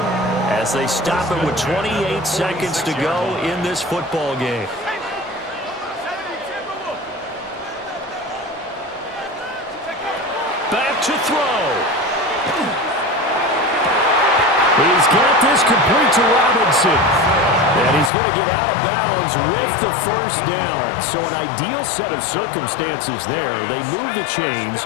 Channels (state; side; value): drops out; right; at 18.1 s